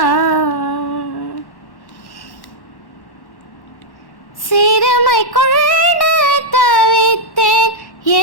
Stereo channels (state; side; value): late; right; 1.1 ms